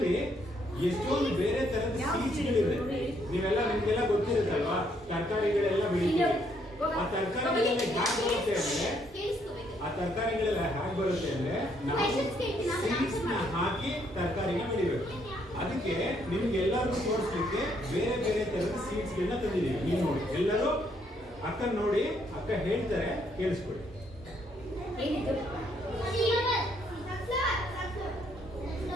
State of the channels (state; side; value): normal; both; correlation 0.71